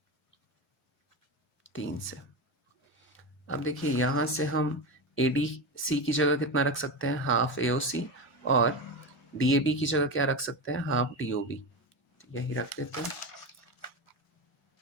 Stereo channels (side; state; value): both; normal; correlation 0.19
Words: 3 से। अब देखिए यहाँ से हम ADC की जगह कितना रख सकते हैं, हाफ AOC, और DAB की जगह क्या रख सकते हैं, हाफ DOB। तो यही रख देते हैं।